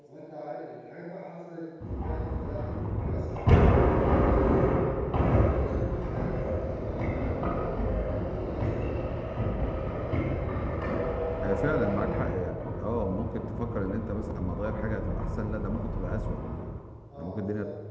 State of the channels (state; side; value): identical; both; correlation 1.00